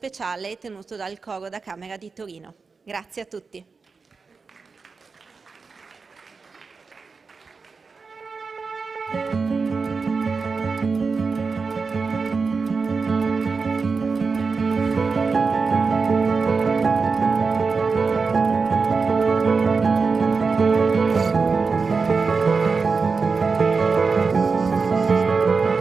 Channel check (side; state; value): left; quieter; 4.7 dB